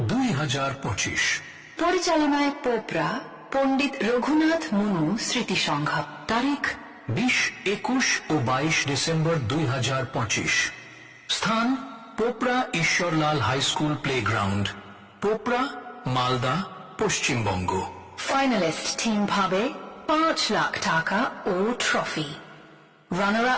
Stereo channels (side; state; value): both; identical; correlation 1.00